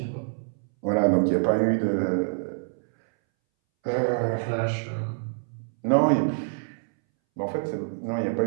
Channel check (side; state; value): left; silent; 61 dB below the other